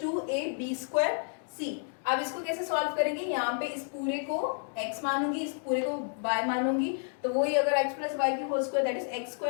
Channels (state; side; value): silent; right; 57 dB below the other